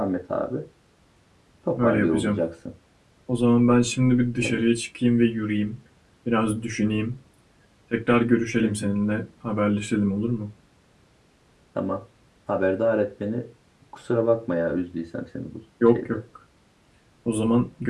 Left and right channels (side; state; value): both; identical; correlation 1.00